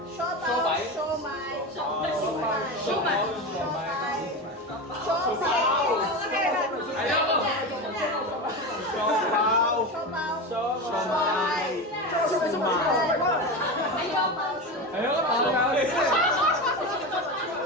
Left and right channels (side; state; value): both; normal; correlation 0.22